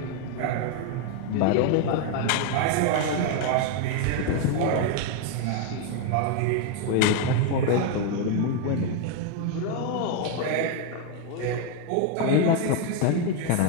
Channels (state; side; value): different; both; correlation 0.01